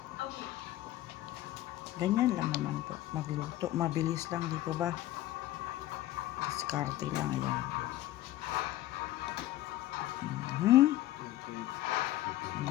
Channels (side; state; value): right; quieter; 14.9 dB